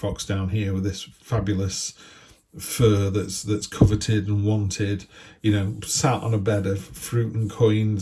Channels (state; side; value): identical; both; correlation 1.00